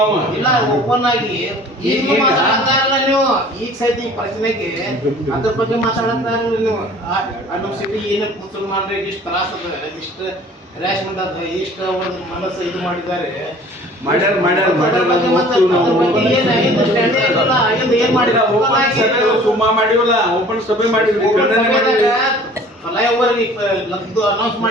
ಓಪನ್ ಆಗಿ ಈಗ ಮಾತಾಡ್ತಾರಲ್ಲ ನೀವು, ಈಗ ಸಹಿತ ಈ ಪ್ರಶ್ನೆಗೆ ಅದ್ರ ಬಗ್ಗೆ ಮಾತಾಡತ್ತಾರಲ್ಲ ನೀವು. ನಮ್ಮ ಸಿಟಿ ಏನೇ ಮುಸಲ್ಮಾನರಿಗೆ ಇಷ್ಟು ತ್ರಾಸ ಅದ, ಇಷ್ಟು ಹ್ಯಾರಾಸ್ಮೆಂಟ್ ಅದ, ಇಷ್ಟು ಅವ್ರ ಮನಸ್ಸು ಇದು ಮಾಡಿದ್ದಾರೆ, ಸುಮ್ಮ ಮಾಡಿವಲ್ಲ, ಓಪನ್ ಸಭೆ ಮಾಡಿದ್ವಿ, ಫ್ಲೈಓವರ್ ಅನೌನ್ಸ್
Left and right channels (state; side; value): normal; both; correlation 0.49